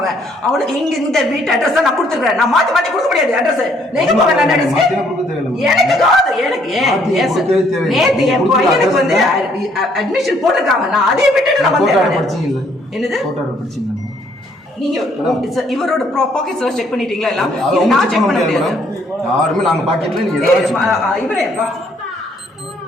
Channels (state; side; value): normal; both; correlation 0.66